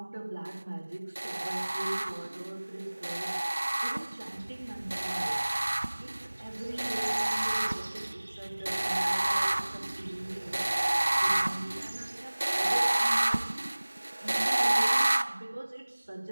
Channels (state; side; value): inverted; both; correlation -1.00